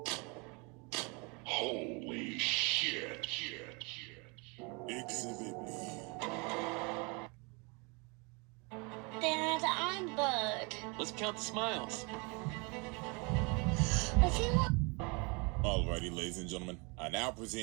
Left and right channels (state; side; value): quieter; left; 30.5 dB